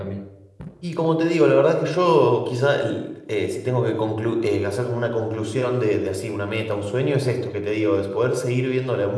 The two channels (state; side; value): identical; both; correlation 1.00